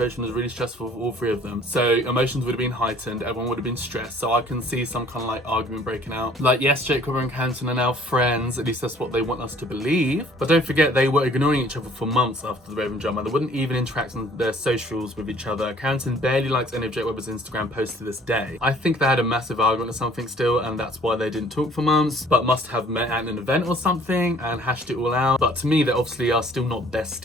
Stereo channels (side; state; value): both; normal; correlation 0.56